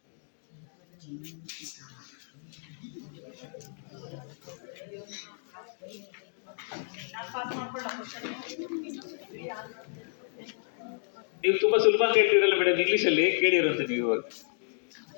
ನೀವು ತುಂಬಾ ಸುಲಭ ಅಂತ ಹೇಳ್ತೀರಲ್ಲ ಮೇಡಮ್, ಇಂಗ್ಲಿಷ್ ಅಲ್ಲಿ ಕೇಳಿರುತ್ತೆ ನೀವು.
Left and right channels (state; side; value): silent; right; digital silence